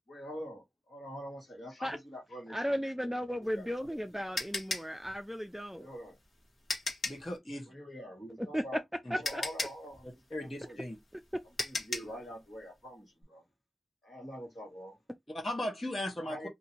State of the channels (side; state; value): both; normal; correlation 0.92